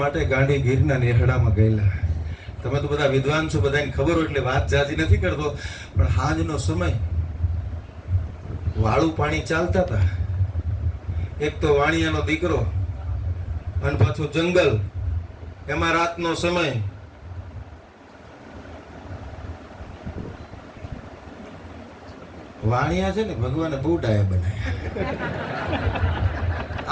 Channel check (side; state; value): both; identical; correlation 1.00